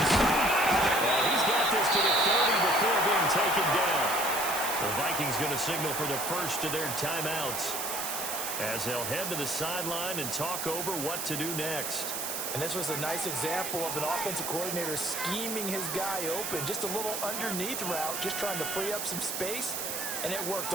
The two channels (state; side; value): noise; right; hiss, 3 dB below the sound